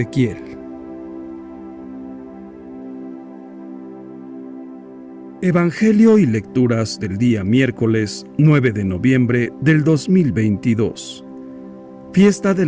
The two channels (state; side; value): identical; both; correlation 1.00